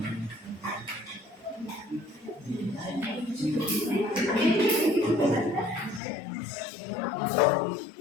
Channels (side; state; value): right; drops out; at 6.0 s